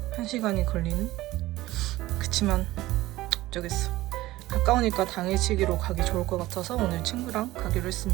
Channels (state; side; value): quieter; left; 17.2 dB